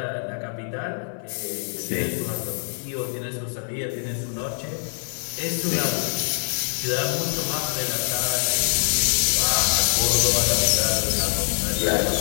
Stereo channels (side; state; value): right; silent; 60 dB below the other